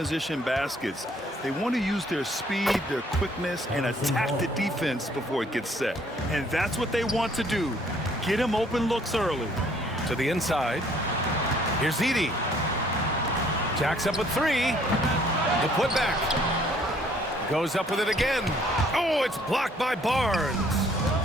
baskets. They want to use their speed, their quickness, and attack the defense before it gets set. And that's what they want to do. Get them open looks early. To the inside. Here's Edey. Jacks up with three. The putback. Goes up with it again. Oh, it's blocked by Barnes.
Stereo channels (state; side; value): normal; both; correlation 0.62